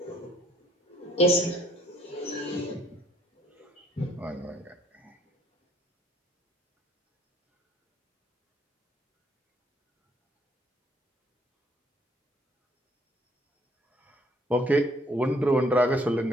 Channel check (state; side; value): normal; both; correlation 0.64